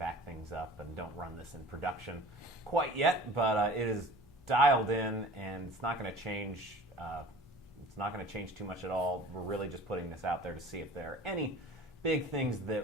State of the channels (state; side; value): normal; both; correlation 0.44